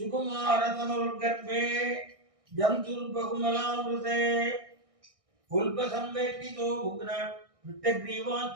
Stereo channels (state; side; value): late; left; 1.6 ms